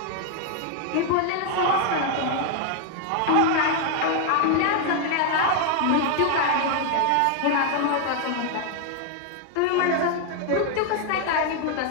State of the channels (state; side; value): different; both; correlation 0.00